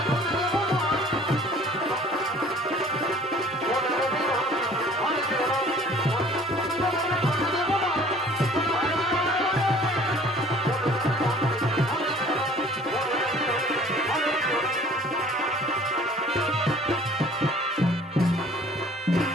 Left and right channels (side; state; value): both; normal; correlation 0.51